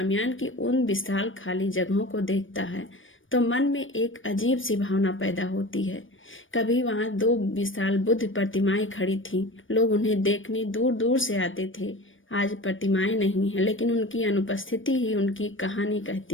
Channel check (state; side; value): late; right; 0.57 ms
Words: की उन विशाल खाली जगहों को देखता है तो मन में एक अजीब सी भावना पैदा होती है। कभी वहां 2 विशाल बुद्ध प्रतिमाएं खड़ी थीं, लोग उन्हें देखने दूर दूर से आते थे। आज प्रतिमाएं नहीं है, लेकिन उनकी अनुपस्थिति ही उनकी कहानी